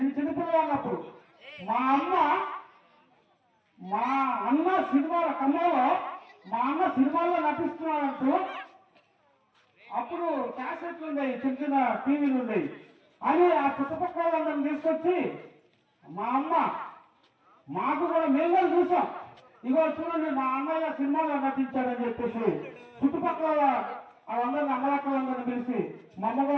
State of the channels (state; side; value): identical; both; correlation 1.00